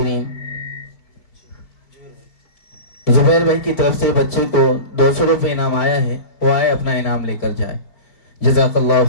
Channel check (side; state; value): right; late; 4.5 ms